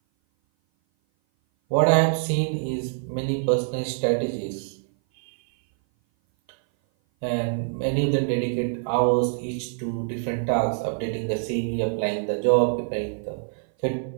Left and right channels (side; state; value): left; silent; 57 dB below the other